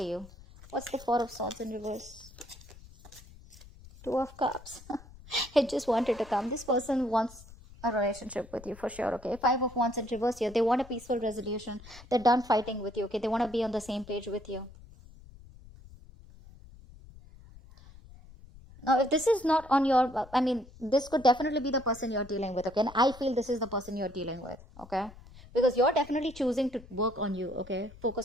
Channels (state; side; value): noise; left; rumble, 20 dB below the sound